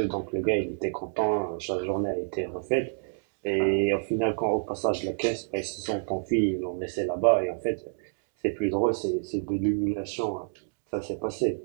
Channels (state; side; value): silent; left; digital silence